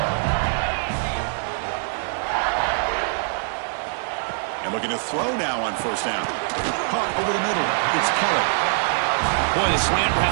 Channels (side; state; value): left; silent; digital silence